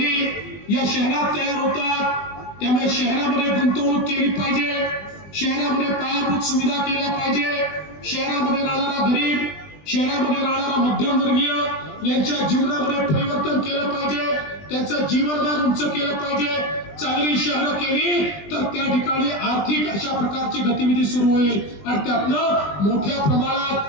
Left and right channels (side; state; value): right; late; 20 ms